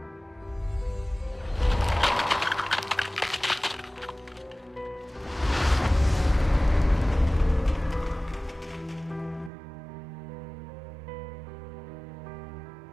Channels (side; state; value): left; drops out; at 9.5 s